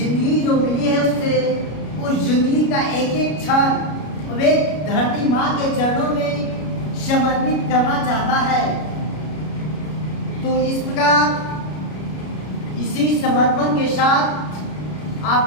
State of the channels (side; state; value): right; late; 33 ms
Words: जो मिली है उससे, उस जिंदगी का एक एक क्षण वे धरती माँ के चरणों में समर्पित करना चाहता है। तो इस प्रकार इसी समर्पण के साथ